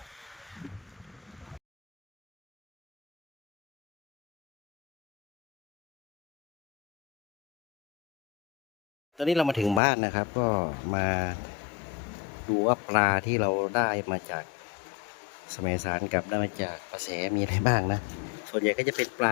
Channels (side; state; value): right; drops out; at 9.8 s